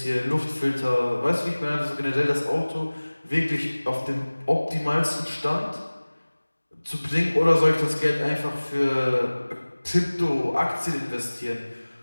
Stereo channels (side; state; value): both; inverted; correlation -1.00